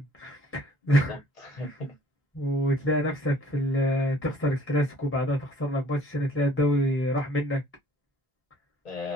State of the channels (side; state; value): both; normal; correlation 0.56